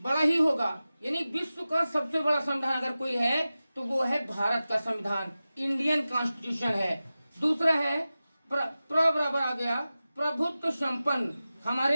ही होगा। यानी विश्व का सबसे बड़ा संविधान अगर कोई है तो वो है भारत का संविधान, इंडियन कॉन्स्टिट्यूशन है। दूसरा है बराबर आ गया, प्रभुत्व संपन्न।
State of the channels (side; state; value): both; inverted; correlation -0.95